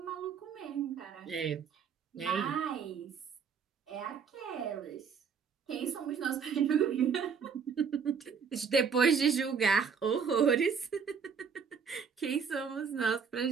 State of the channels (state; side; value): quieter; left; 6.4 dB